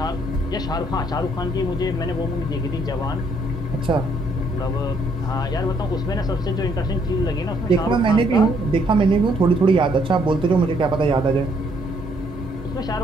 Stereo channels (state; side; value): normal; both; correlation 0.68